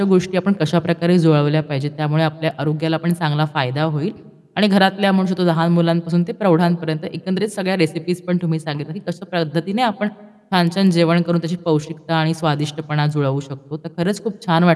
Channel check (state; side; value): identical; both; correlation 1.00